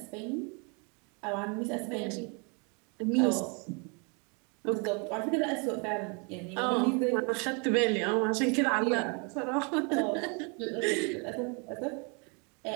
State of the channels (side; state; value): left; quieter; 34.5 dB